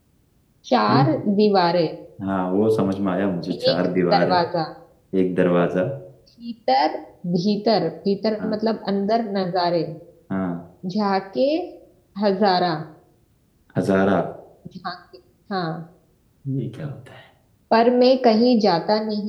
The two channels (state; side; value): identical; both; correlation 1.00